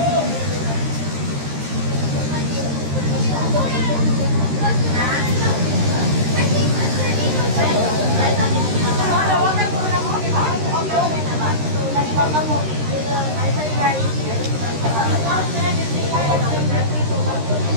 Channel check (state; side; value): late; left; 13 ms